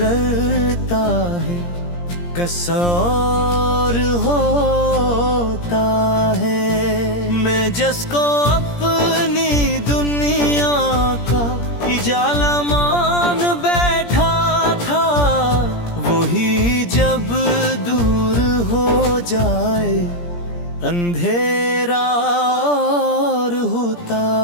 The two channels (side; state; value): right; late; 17 ms